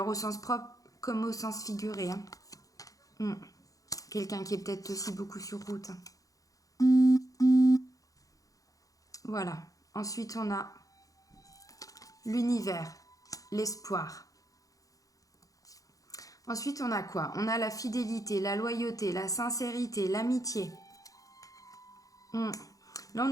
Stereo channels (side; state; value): right; late; 0.17 ms